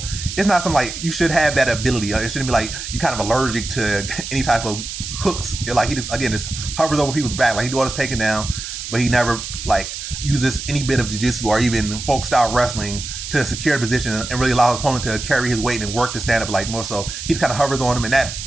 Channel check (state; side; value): noise; right; hiss, 8 dB below the sound